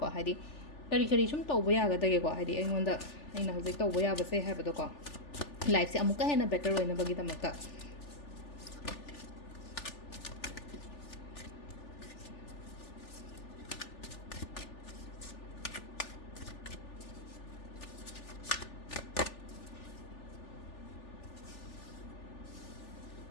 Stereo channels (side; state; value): right; late; 3.4 ms